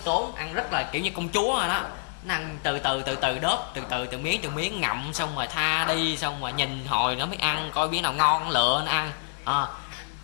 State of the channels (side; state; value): right; silent; 58 dB below the other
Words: ăn rất là kiểu như công chúa rồi đó. Nó ăn từ từ đớp, từ miếng ngậm, xong rồi tha đi, xong rồi nhìn hồi nó mới ăn, coi miếng nào ngon lựa nó ăn.